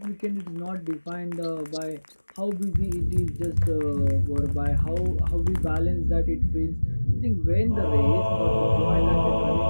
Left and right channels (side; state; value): both; inverted; correlation -1.00